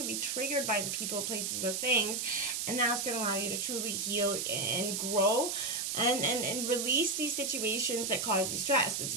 to be triggered by the people, places, or things, and that's going to allow you to truly heal and grow and release these situations that cause you stress. Because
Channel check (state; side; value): noise; right; hiss, 1 dB below the sound